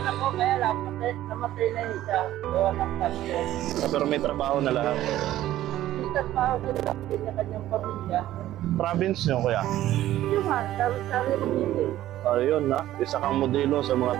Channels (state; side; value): quieter; left; 13.9 dB